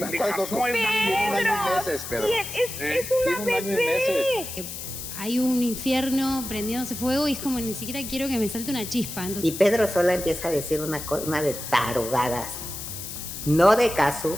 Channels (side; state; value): left; noise; hiss, 8 dB below the sound